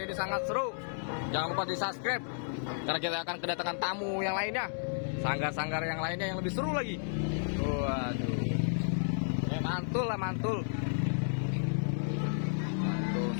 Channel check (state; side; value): silent; right; digital silence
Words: ini sangat seru. Jangan lupa di subscribe karena kita akan kedatangan tamu yang lainnya, sanggar-sanggar yang lainnya yang lebih seru lagi. Waduh, mantul